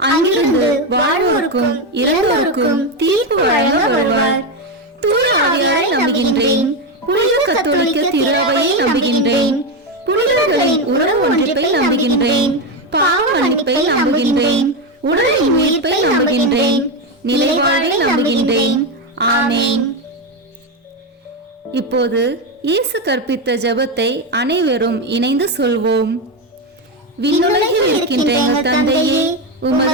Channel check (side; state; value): both; normal; correlation 0.10